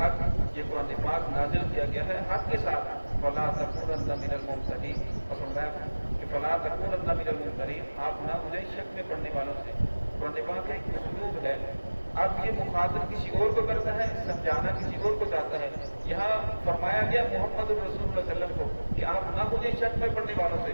یہ قرآن پاک نازل کیا گیا ہے حق کے ساتھ. فلا تکونن من الممترین, اور فرمایا کہ فلا تکونن من الممترین, آپ نہ ہو جائیں شک میں پڑھنے والوں سے. قرآن پاک کا ایک اسلوب ہے, اب یہ مخاطب کسی اور کو کرتا ہے, سمجھانا کسی اور کو چاہتا ہے. یہاں فرمایا گیا محمد رسول اللہ صلی اللہ علیہ وسلم کو کہ آپ نہ مجھے شک میں پڑھنے والوں سے,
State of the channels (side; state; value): both; inverted; correlation -1.00